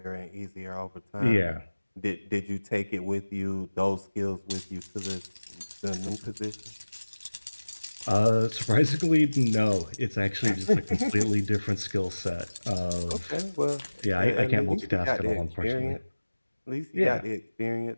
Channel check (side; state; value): both; inverted; correlation -1.00